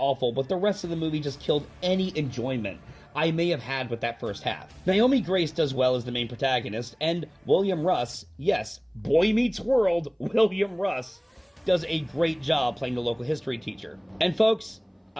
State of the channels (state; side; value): identical; both; correlation 1.00